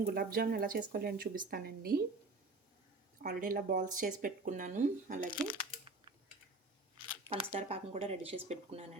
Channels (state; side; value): quieter; left; 3.2 dB